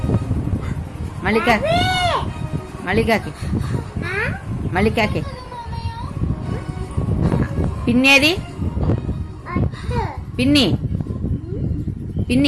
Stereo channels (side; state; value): both; identical; correlation 1.00